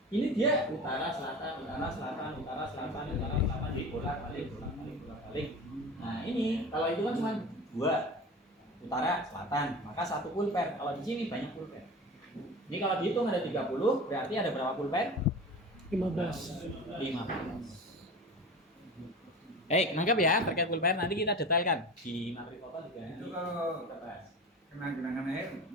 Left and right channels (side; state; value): both; normal; correlation 0.33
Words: dia utara selatan, utara selatan, utara selatan, utara selatan, bolak-balik, bolak-balik, bolak-balik. Nah ini kalau itu kan cuma 2 utara selatan, maka 1 pulper. Kalau di sini banyak pulper. Ini kalau dihitung ada 30, berarti ada berapa pulper? 15. 15. Baik, nangkep ya terkait pulper. Nanti kita detailkan di materi foto juga. Itu kalau Kita bahas. kena genangan air